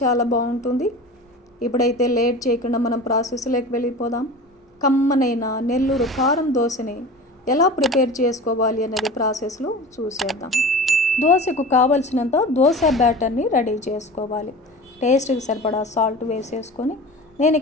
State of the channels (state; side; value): normal; both; correlation 0.35